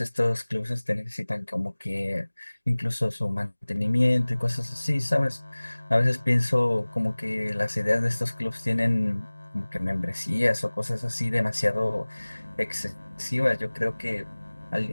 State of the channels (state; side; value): inverted; both; correlation -1.00